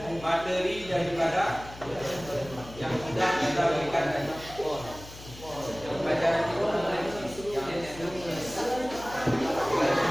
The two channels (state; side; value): noise; left; hum, 16 dB below the sound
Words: materi daripada yang sudah kita berikan tadi. Pelajaran itu